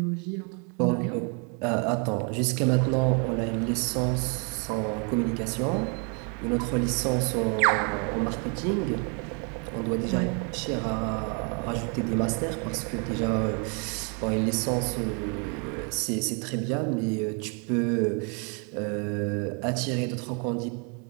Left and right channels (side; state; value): left; quieter; 36.5 dB